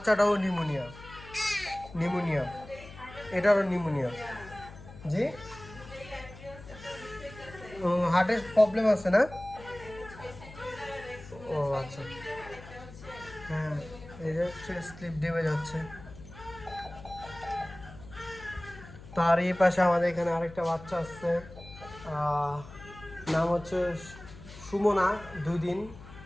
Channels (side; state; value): left; noise; hum, 16 dB below the sound